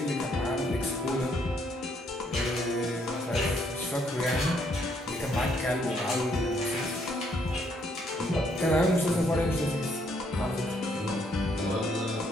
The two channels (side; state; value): both; normal; correlation 0.70